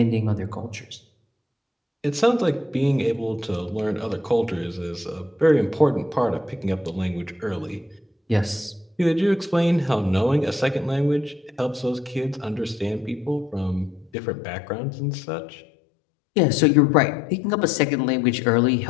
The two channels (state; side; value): drops out; right; at 14.1 s